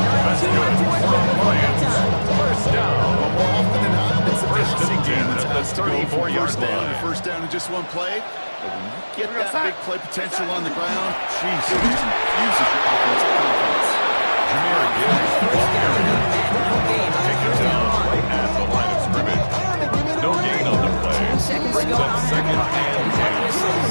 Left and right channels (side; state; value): both; inverted; correlation -1.00